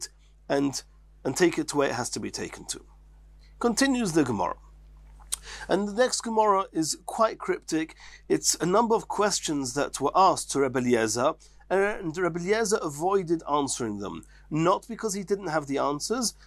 and take it to where it has to be taken to. Continues the Gemara. And the next Gemara is quite cryptic. It's a number of questions that were asked to Rabbi Eliezer, and Rabbi Eliezer avoided answering them. Not because he didn't have the answers,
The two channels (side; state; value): both; identical; correlation 1.00